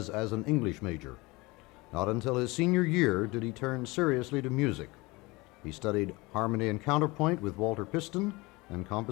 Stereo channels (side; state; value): right; quieter; 23.5 dB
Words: as an English major. Not until his senior year did he turn seriously to music. He studied harmony and counterpoint with Walter Piston and